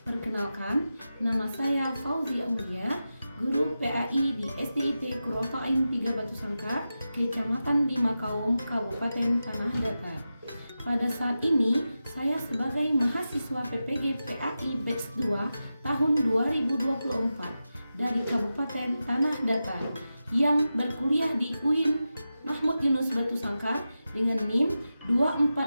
Perkenalkan, nama saya Fauzi Aulia, guru PAI di SDIT Kurofain 3 Batu Sangkar, Kecamatan Dimakaum, Kabupaten Tanah Datar. Pada saat ini, saya sebagai mahasiswa PPG PAI Batch 2 tahun 2024 dari Kabupaten Tanah Datar yang berkuliah di UIN Mahmud Yunus Batu Sangkar dengan NIM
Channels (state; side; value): inverted; both; correlation -0.92